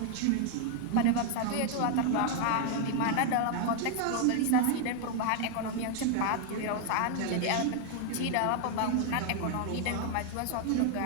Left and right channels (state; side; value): different; both; correlation 0.00